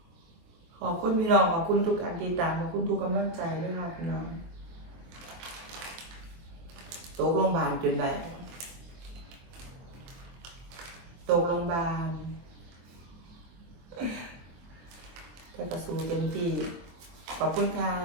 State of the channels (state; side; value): late; left; 23 ms